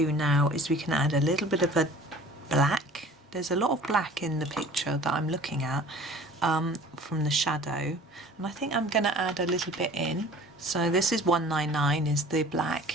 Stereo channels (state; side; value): normal; both; correlation 0.46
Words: now is we can add a little bit of a black. There's a lot of black in the picture that I'm looking at from the shadow, and I think I'm going to add a little bit in. So this is 199 is the